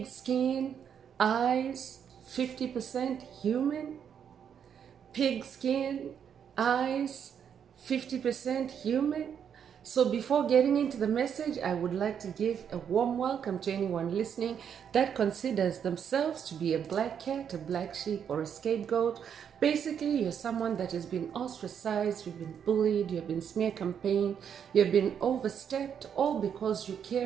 skin, eyes, 50% human. Pig skin, eyes, 50% human. So before getting into the message, I would like to give a warm welcome to anyone listening that considers themselves to be a black cat, a black sheep, or a scapegoat. Basically, you're someone that has been ostracized, you've been bullied, you've been smear campaigned, you've been overstepped, all because you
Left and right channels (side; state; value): left; quieter; 8.1 dB